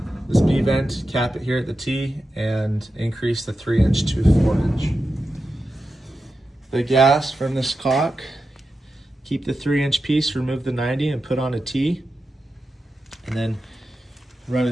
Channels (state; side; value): normal; both; correlation 0.90